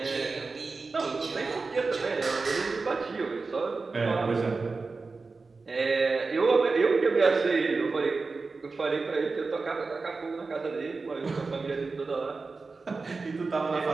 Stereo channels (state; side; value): quieter; left; 4.1 dB